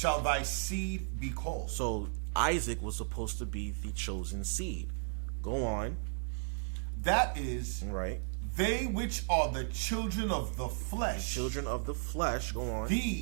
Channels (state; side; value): silent; left; digital silence